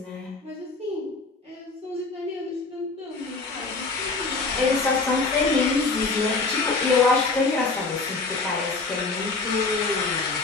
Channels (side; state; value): right; quieter; 3.9 dB